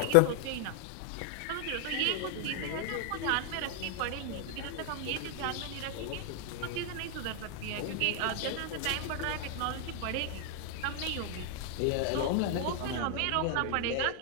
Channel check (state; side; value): different; both; correlation 0.00